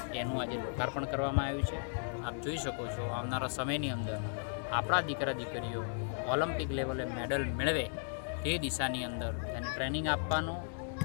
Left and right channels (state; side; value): silent; right; 54 dB below the other